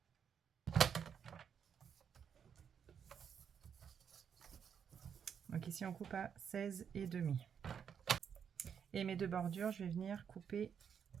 Donc ici on coupe à 16,5. Et mes deux bordures, je vais venir couper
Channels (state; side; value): quieter; left; 7.6 dB